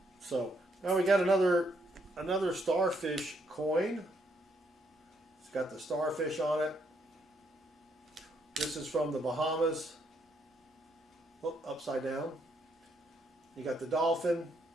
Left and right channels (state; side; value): normal; both; correlation 0.73